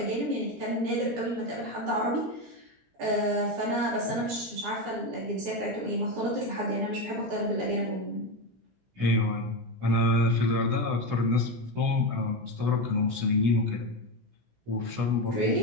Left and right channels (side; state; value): left; late; 17 ms